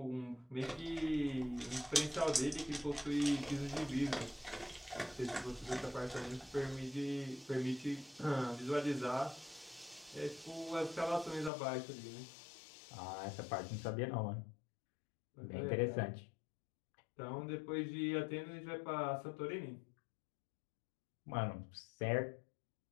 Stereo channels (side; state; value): right; drops out; at 11.5 s